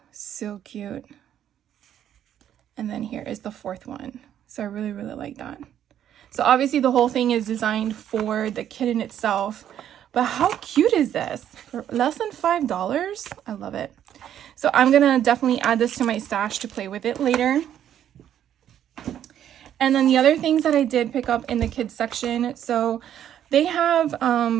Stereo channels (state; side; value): quieter; left; 10.4 dB